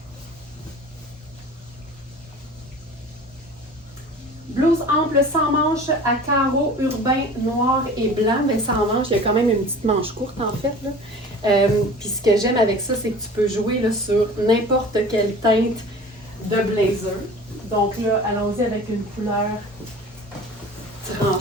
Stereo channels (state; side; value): normal; both; correlation 0.41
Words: blouse ample sans manches à carreaux urbains noir et blanc. Mais sans manches, il y a quand même une petite manche courte en fait. Puis ce que j'aime avec ça, c'est que tu peux jouer là, sur n'importe quelle teinte de blazer. Donc là, allons-y avec une couleur